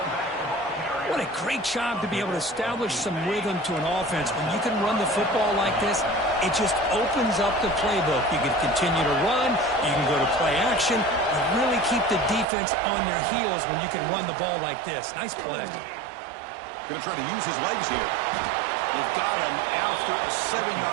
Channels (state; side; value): drops out; left; at 12.5 s